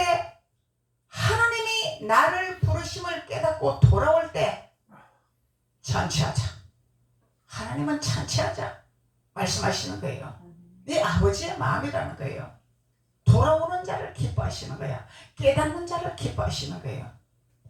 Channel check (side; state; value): both; identical; correlation 1.00